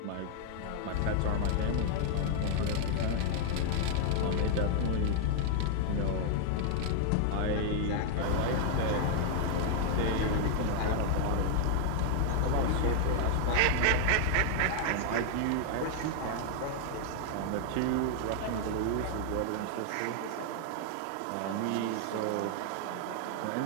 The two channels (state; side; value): different; both; correlation 0.00